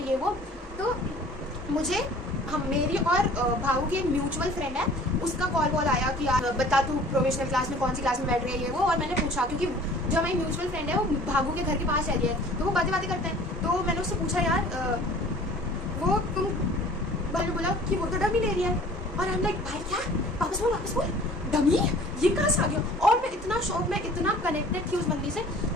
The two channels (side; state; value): both; normal; correlation 0.49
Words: ये वो। तो मुझे हम मेरी और भाऊ की एक म्यूचुअल फ्रेंड है, उसका कॉल आया कि यार बता तू प्रोविजनल क्लास में कौन सी क्लास में बैठ रही है ये वो। और मैंने पूछा क्योंकि जो हमारी म्यूचुअल फ्रेंड है वो भागू के घर के पास रहती है तो वो बातें करते हैं। तो मैंने उससे पूछा यार वो तुम, मैंने बोला कि वो तो डमी ले रही है। और हम लाइक भाई क्या, वापस बोल डमी, ये कहाँ से आ गया। और मैं इतना शौक में इतना कनेक्टेड थी उस बंदी से